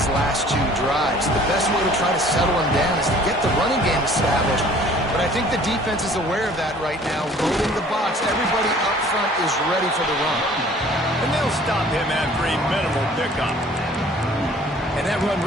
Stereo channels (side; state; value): both; normal; correlation 0.52